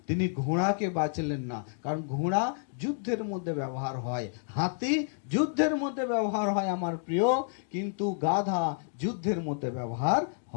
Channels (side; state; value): right; silent; digital silence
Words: তিনি ঘোড়াকে বাঁচলেন না, কারণ ঘোড়া যুদ্ধের মধ্যে ব্যবহার হয়, হাতি যুদ্ধের মধ্যে ব্যবহার হয় আমার প্রিয়, কিন্তু গাধা যুদ্ধের মধ্যে ব্যবহার